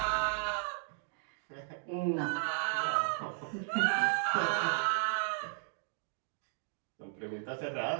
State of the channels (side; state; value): left; silent; digital silence